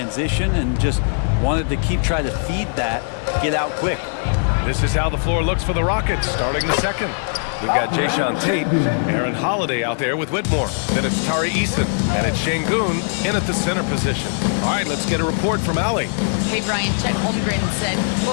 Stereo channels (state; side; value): silent; right; digital silence